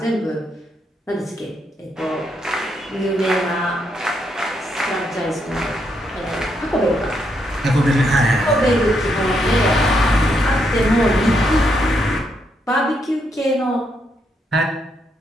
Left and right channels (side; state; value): both; normal; correlation 0.78